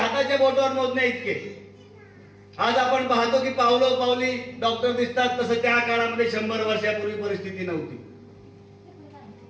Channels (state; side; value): identical; both; correlation 1.00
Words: बोटावर मोजणे इतके. आज आपण पाहतो की पावलो पावली डॉक्टर दिसतात, तसं त्या काळामध्ये 100 वर्षापूर्वी परिस्थिती नव्हती.